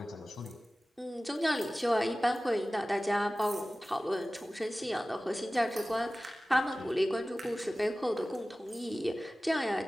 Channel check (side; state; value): both; normal; correlation 0.97